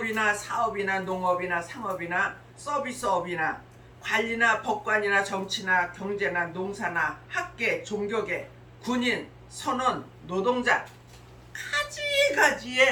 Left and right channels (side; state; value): both; identical; correlation 1.00